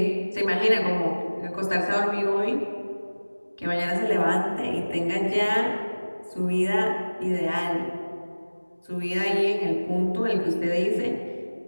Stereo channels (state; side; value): inverted; both; correlation -1.00